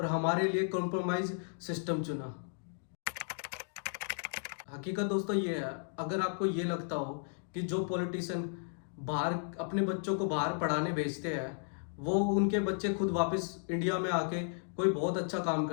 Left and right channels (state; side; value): silent; right; digital silence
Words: हमारे लिए कॉम्प्रोमाइज सिस्टम चुना। हकीकत दोस्तों ये है, अगर आपको ये लगता हो कि जो पॉलिटिशियन बाहर अपने बच्चों को बाहर पढ़ाने भेजते हैं, वो उनके बच्चे खुद वापस इंडिया में आके कोई बहुत अच्छा काम